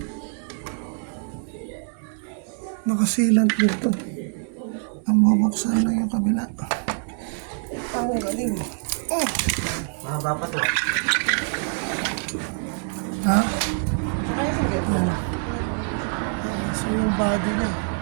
nakasilant dito. Ang mabuksan lang yung kabila. Ang galing. Mahaba pa to. Ha? Yan. So yung body niya,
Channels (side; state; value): left; silent; 57 dB below the other